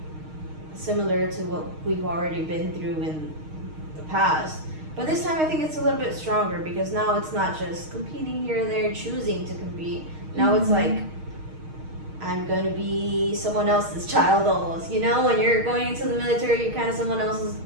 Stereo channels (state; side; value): late; left; 6.4 ms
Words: similar to what we've already been through in the past. But this time I think it's a little bit stronger because now it's not just competing here and there, choosing to compete. Now it's like I'm going to be someone else's child almost. You know, when you're going into the military, you're kind of